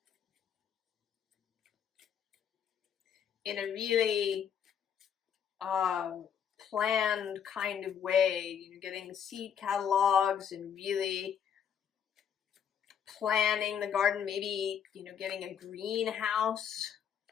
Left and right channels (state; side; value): quieter; right; 8.2 dB